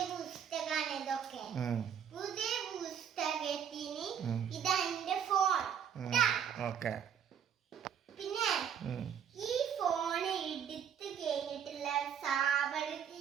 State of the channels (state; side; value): quieter; left; 8.3 dB